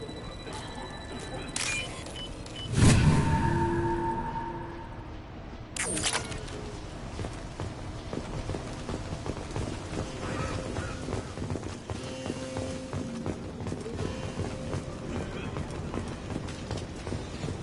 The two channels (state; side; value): identical; both; correlation 1.00